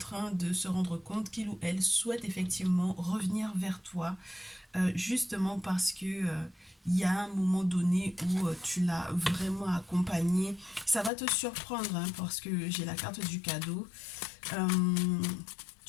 de se rendre compte qu'il ou elle souhaite effectivement revenir vers toi, justement parce que il y a un moment donné où tu l'as vraiment accompagné. Ça va te surprendre hein, parce que j'ai la carte du cadeau. Euh,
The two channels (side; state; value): right; drops out; at 11.1 s